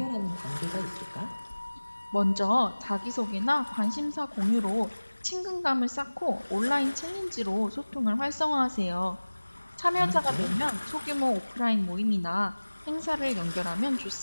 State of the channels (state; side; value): inverted; both; correlation -1.00